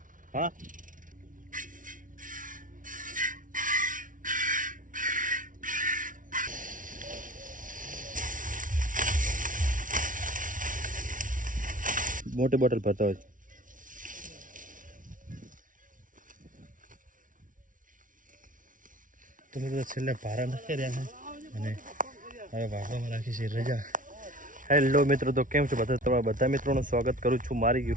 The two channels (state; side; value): late; left; 0.38 ms